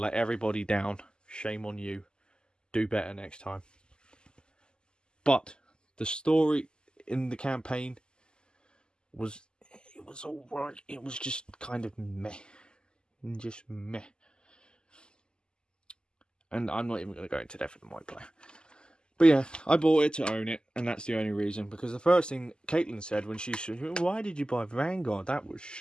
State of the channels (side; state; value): right; late; 0.047 ms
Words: everybody down. Shame on you. Do better next time. But the story in the campaign was alright. It was just kind of meh. Just meh. And I'm not even going to go into depth with the multiplayer. But yeah, I bought it to own it, and that's the only reason. Because the first thing Caitlin said when she said, why did you buy Vanguard? That was